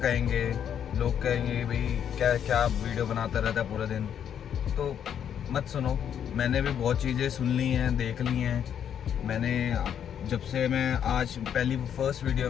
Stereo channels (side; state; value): right; quieter; 8.9 dB